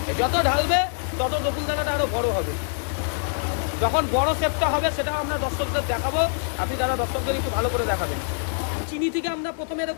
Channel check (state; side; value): silent; right; digital silence